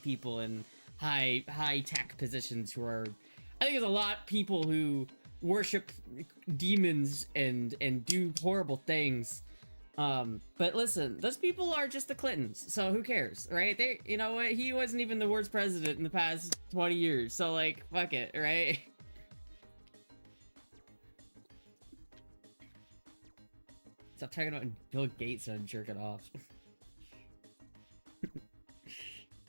in high tech positions who are. I think there's a lot of people who worship demons and do horrible things. But listen, those people are just the Clintons, so who cares, right? You know what? He wasn't even the worst president in the past 20 years, so, like, fuck it, right? Stop talking about Bill Gates and jerk it off.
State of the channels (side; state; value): both; inverted; correlation -1.00